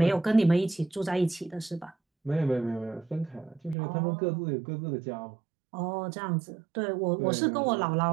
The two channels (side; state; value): left; drops out; at 3.8 s